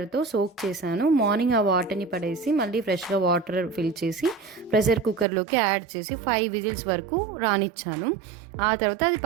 సోక్ చేశాను. మార్నింగ్ ఆ వాటర్‌ని పడేసి, మళ్ళీ ఫ్రెష్‌గా వాటర్ ఫిల్ చేసి, ప్రెషర్ కుక్కర్‌లోకి యాడ్ చేసి 5 విజిల్స్ వరకు రానిచ్చాను. ఆ తర్వాత అది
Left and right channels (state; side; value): drops out; left; at 5.2 s